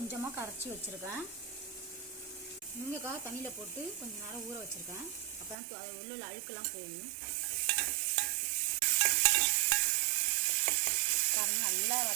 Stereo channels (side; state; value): left; drops out; at 5.6 s